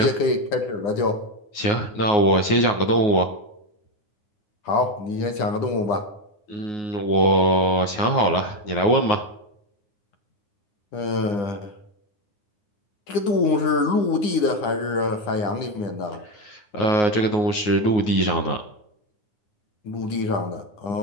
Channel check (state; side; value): late; right; 9.5 ms